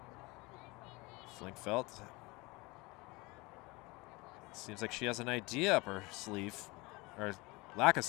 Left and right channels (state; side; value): quieter; right; 24.2 dB